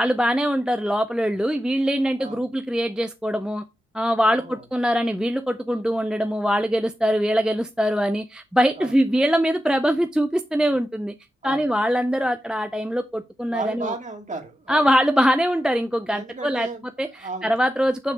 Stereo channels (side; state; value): both; normal; correlation 0.91